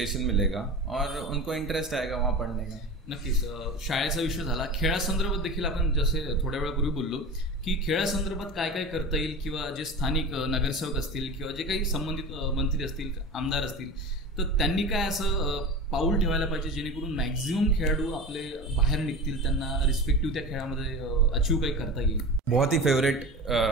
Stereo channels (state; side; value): normal; both; correlation 0.31